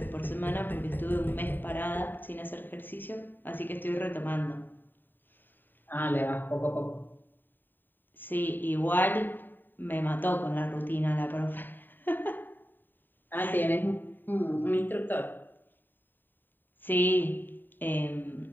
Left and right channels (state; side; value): late; right; 0.092 ms